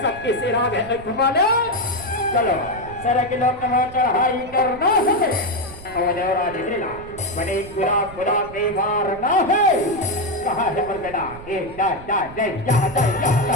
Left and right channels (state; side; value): noise; right; rumble, 17 dB below the sound